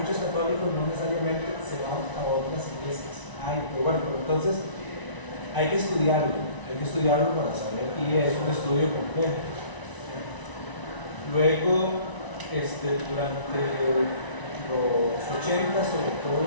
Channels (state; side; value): late; right; 1.0 ms